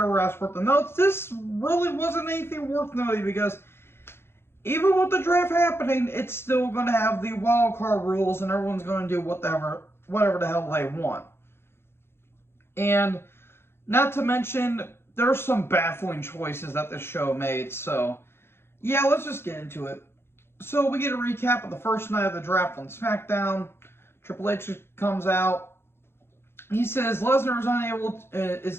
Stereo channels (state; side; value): late; right; 0.12 ms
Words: worth of notes, this really wasn't anything worth noting because even with the draft happening, it's still going to have the wild card rules, and everyone's going to do whatever the hell they want. And not to mention, there's some baffling choices that this show made. So yeah, let's just get into it. So we get a recap of the first night of the draft on SmackDown. Triple H comes out. He says Lesnar